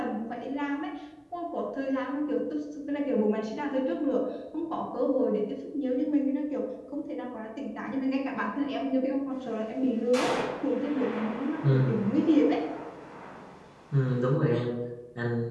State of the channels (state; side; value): identical; both; correlation 1.00